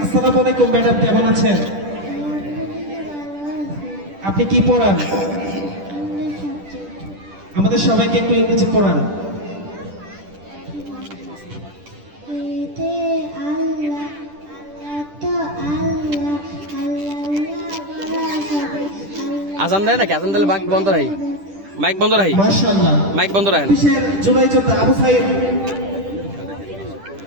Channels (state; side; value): late; left; 10 ms